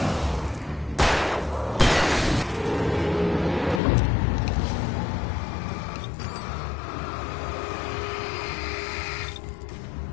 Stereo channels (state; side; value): drops out; right; at 3.8 s